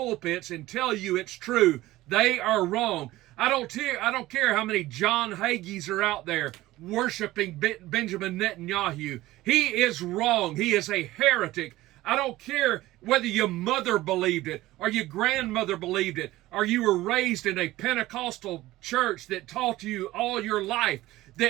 and tell you it's true. They are wrong. I don't care how many John Hagees are out there worshiping Benjamin Netanyahu. He is wrong. He is a heretic. I don't care whether your mother believed it or your grandmother believed it or you were raised in a Pentecostal church that taught you all your life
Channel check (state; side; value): quieter; left; 17.1 dB